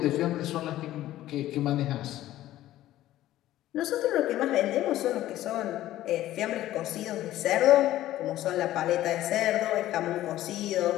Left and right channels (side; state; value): right; quieter; 14.3 dB